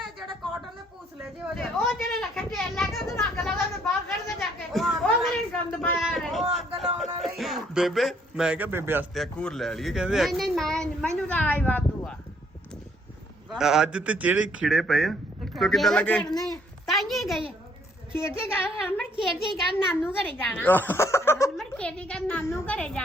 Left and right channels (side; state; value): both; normal; correlation 0.66